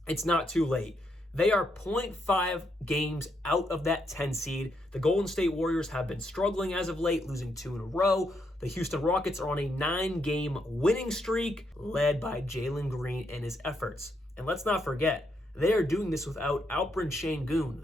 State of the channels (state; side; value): normal; both; correlation 0.78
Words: it's not too late. They are 0.5 games out of that 10 seed. The Golden State Warriors have been struggling as of late, losing 2 in a row. The Houston Rockets are on a 9-game winning streak, led by Jalen Green and his efforts. And let's not forget, they are doing this without Alperen